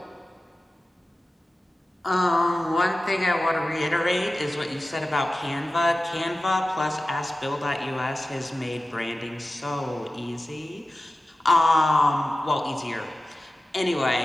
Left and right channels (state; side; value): normal; both; correlation 0.95